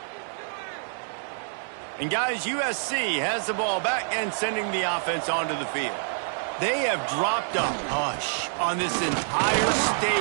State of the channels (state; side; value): silent; left; 60 dB below the other